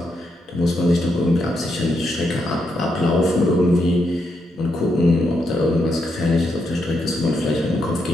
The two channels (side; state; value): both; normal; correlation 0.80